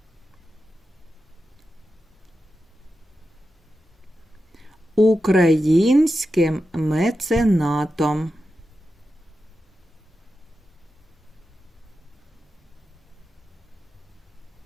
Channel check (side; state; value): both; normal; correlation 0.90